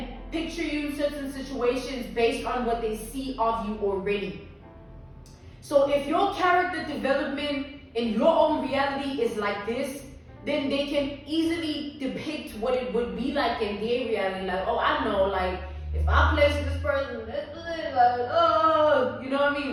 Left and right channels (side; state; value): both; identical; correlation 1.00